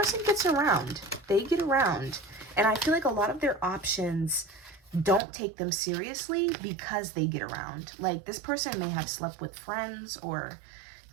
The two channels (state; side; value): drops out; left; at 5.2 s